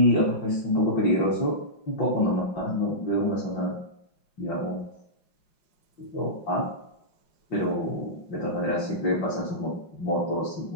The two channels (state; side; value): late; right; 5.6 ms